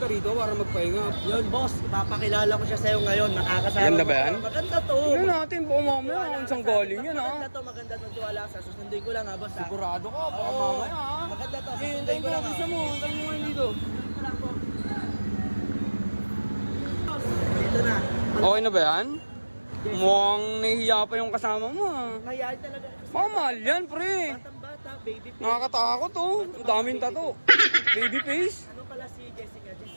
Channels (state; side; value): inverted; both; correlation -1.00